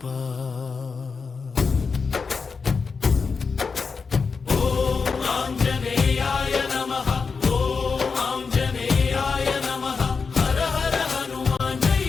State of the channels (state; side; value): quieter; right; 5.0 dB